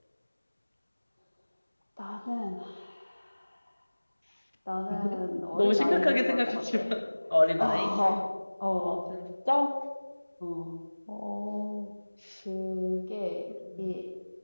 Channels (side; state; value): both; inverted; correlation -1.00